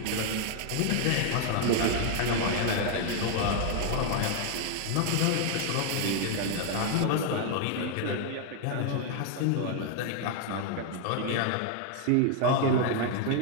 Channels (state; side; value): different; both; correlation 0.00